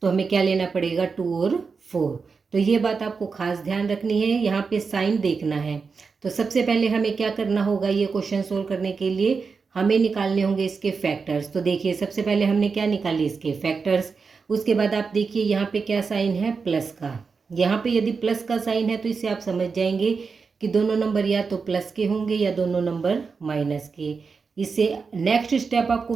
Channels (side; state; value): left; quieter; 5.0 dB